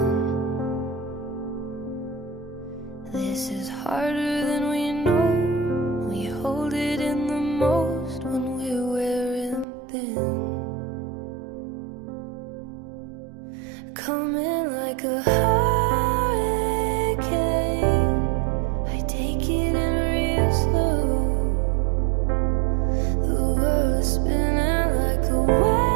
This is harder than we know. We hold it in the most when we're wearing thin. Coming like a hurricane, I take it in real slow. The world is spinning like a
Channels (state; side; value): drops out; left; at 9.7 s